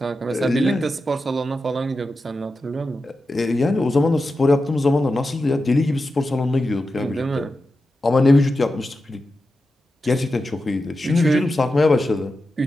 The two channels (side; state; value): both; normal; correlation 0.90